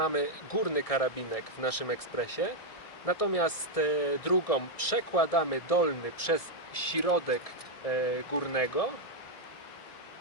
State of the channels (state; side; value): late; right; 1.6 ms